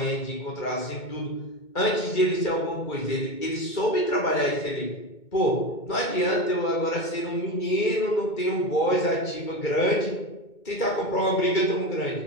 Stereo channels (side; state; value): right; late; 2.2 ms